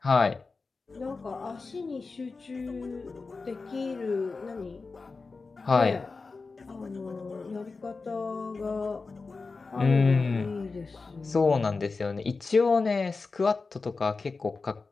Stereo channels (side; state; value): right; quieter; 4.1 dB